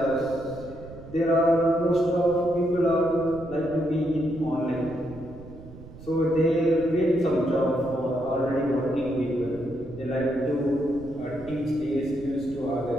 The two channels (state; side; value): noise; right; rumble, 16 dB below the sound